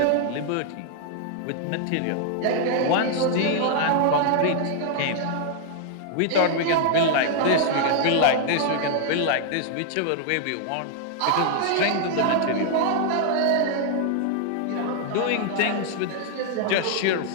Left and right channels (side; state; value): both; different; correlation 0.00